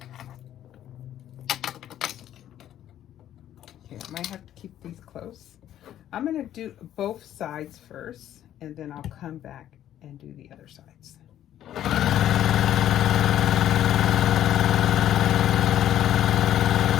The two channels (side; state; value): right; quieter; 11.6 dB